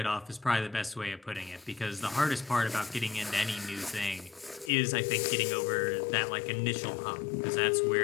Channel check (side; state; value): right; drops out; at 4.7 s